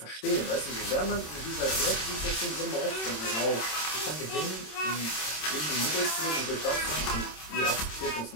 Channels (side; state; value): right; late; 26 ms